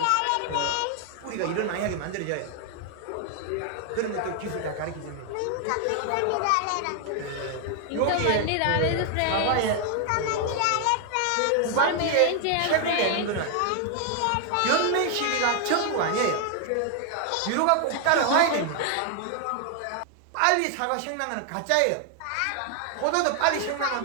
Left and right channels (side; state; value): both; different; correlation 0.00